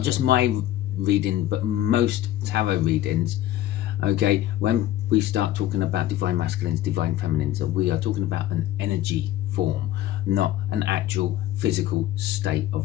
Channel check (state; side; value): quieter; right; 13.5 dB